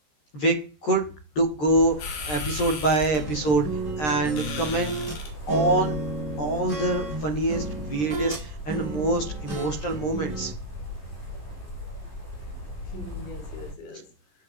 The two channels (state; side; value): late; right; 13 ms